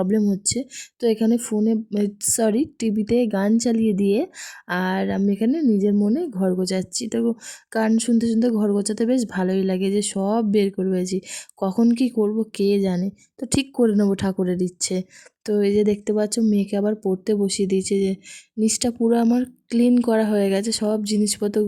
হচ্ছে। তো এখানে টিভিতে গান চালিয়ে দিয়ে আর আমি এখানে নিজের মনে ঘর গোছাচ্ছি। তো গান শুনতে শুনতে ঘর গোছাতে বেশ ভালোই লাগে, যে সব বের করে রয়েছি। কখন কি করব কে জানে, তো ঠিক করে নেবো ঠাকুরের ইচ্ছে। তো এই যে দেখতে পাচ্ছ মেয়েকে আবার পড়তে বসিয়ে দিয়েছে। যে নিচটা পুরো আমার ক্লিন করা হয়ে গেছে, সব জিনিসপত্র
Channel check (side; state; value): both; identical; correlation 1.00